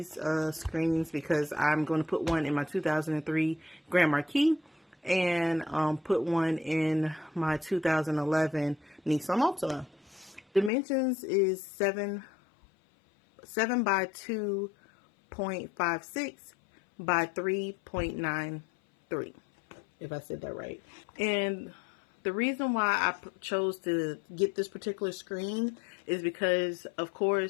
screens because I'm going to put one in my 2003 Grand Marquis and put one in my 2011 Nissan Altima. Dimensions is 7 by 2.56 by 3.93, if I said that right. And the reason why I chose to get this particular screen is because, of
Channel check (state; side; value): drops out; right; at 10.7 s